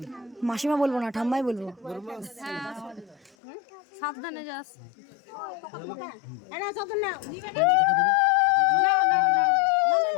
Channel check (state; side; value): drops out; right; at 3.4 s